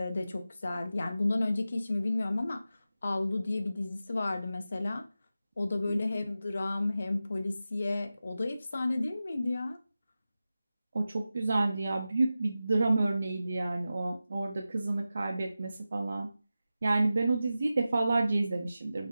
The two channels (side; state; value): both; inverted; correlation -0.93